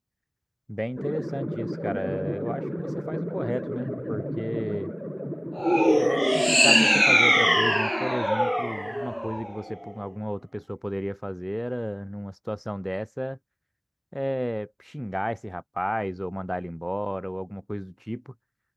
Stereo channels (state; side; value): identical; both; correlation 1.00